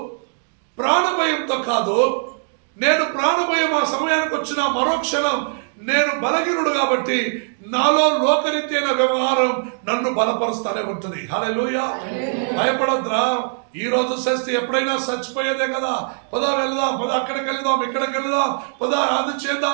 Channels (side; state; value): left; silent; 59 dB below the other